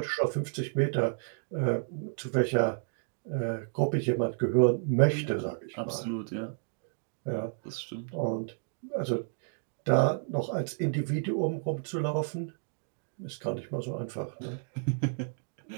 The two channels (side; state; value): left; silent; digital silence